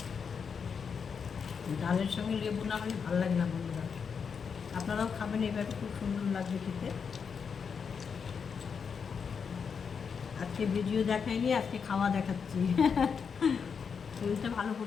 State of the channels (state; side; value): quieter; right; 6.2 dB